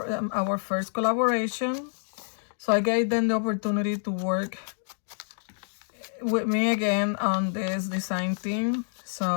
first collaboration. So I gave them the opportunity to work with me again on this design team.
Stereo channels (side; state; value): right; silent; digital silence